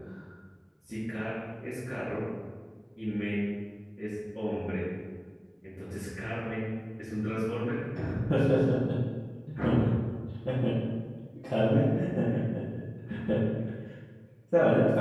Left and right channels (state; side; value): identical; both; correlation 1.00